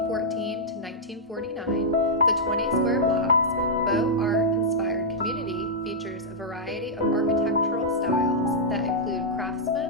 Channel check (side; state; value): both; normal; correlation -0.09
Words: to 1949, the 20 square blocks, Beaux Art-inspired community features a variety of architectural styles that include